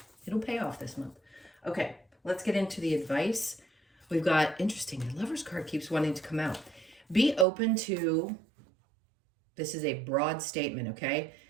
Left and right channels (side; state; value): left; drops out; at 7.5 s